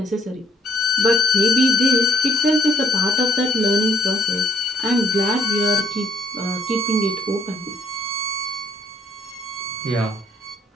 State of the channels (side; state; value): both; normal; correlation 0.66